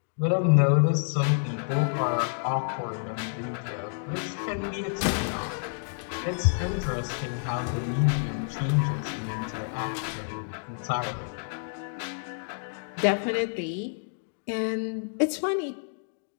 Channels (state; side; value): silent; right; digital silence